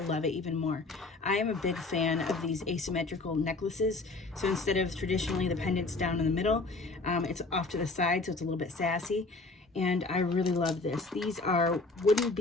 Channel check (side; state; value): right; quieter; 3.4 dB